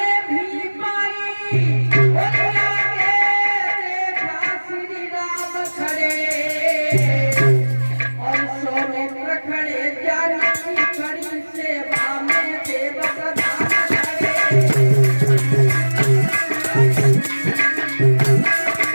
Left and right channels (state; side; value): inverted; both; correlation -1.00